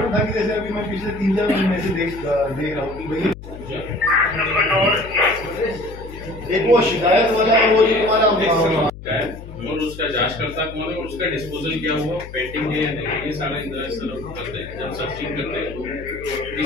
था कि जैसे अभी मैं पिछले 3-4 महीने से देख रहा हूँ कि भाई एक वो शिकायत वाला वो जो तुम्हारा और उसका जांचकर्ता कौन है और उसका डिस्पोजल क्या हुआ, पेंटिंग है या नहीं, ये सारा इंतजार सर करते हैं। जब सर्चिंग करते हैं तो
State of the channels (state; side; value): noise; left; hum, 14 dB below the sound